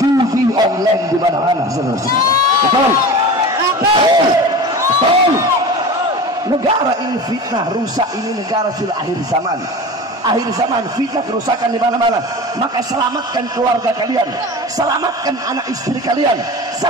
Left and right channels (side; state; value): both; normal; correlation 0.33